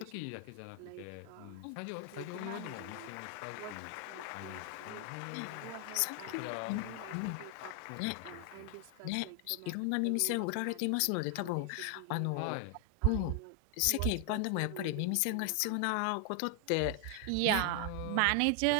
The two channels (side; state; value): both; different; correlation 0.00